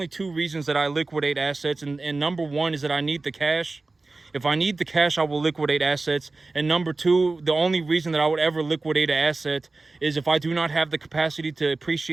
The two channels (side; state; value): left; quieter; 3.4 dB